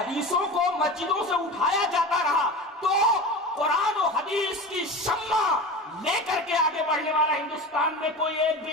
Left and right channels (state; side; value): normal; both; correlation 0.30